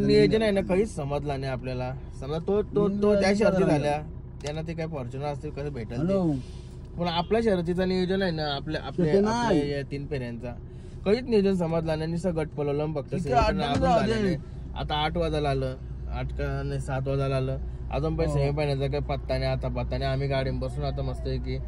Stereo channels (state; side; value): identical; both; correlation 1.00